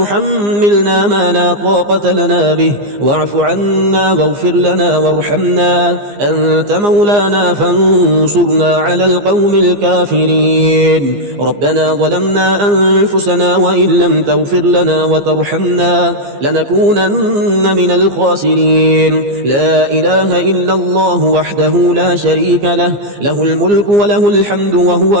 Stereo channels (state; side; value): late; left; 15 ms